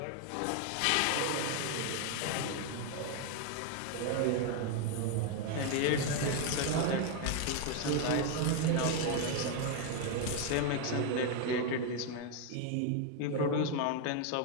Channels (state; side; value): different; both; correlation 0.01